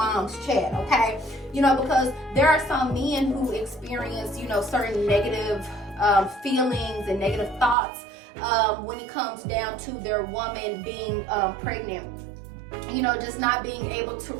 chat, okay? You know, because there are some men who experience, you know, certain negative feelings and negative thoughts when it comes down to their woman being pregnant. You know, just not being able to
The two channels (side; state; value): left; drops out; at 7.8 s